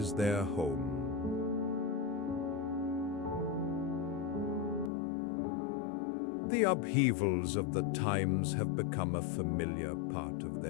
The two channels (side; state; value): right; drops out; at 4.9 s